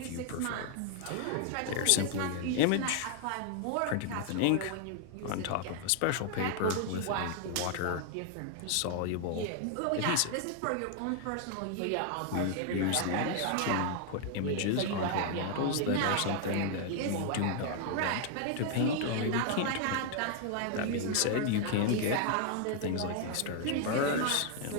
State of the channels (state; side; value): different; both; correlation 0.00